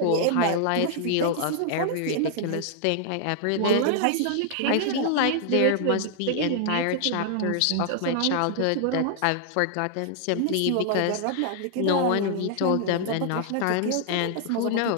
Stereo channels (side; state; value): both; different; correlation -0.01